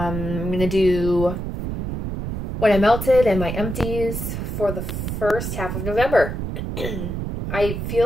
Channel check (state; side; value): noise; right; rumble, 4 dB below the sound